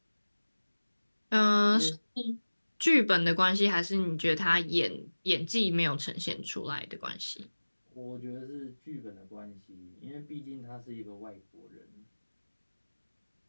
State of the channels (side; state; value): both; inverted; correlation -1.00